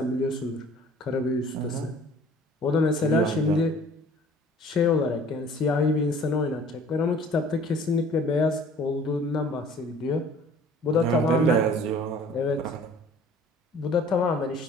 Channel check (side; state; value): both; normal; correlation 0.51